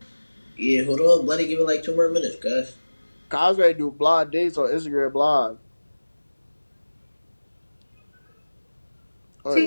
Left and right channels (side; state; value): both; inverted; correlation -1.00